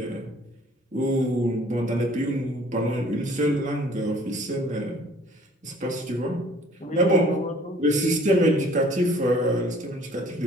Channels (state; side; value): normal; both; correlation 0.55